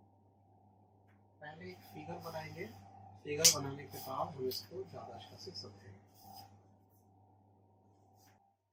पहले एक फिगर बनाएंगे, फिगर बनाने के बाद हम इसको ज़्यादा अच्छा से समझेंगे।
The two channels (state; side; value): identical; both; correlation 1.00